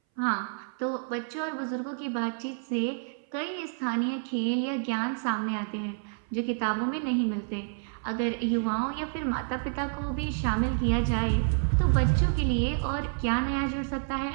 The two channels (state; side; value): silent; left; 59 dB below the other